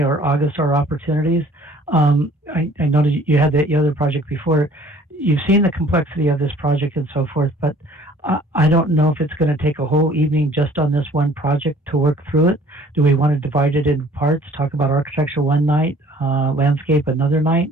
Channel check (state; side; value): normal; both; correlation 0.54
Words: August are opportunities. I know that you had the other project before. You've seen the complexity of this project and so forth, but I don't know if it's going to take a whole evening just on this one project to work through it. Do we want to divide it into parts, talk about architecture one night, landscape another night?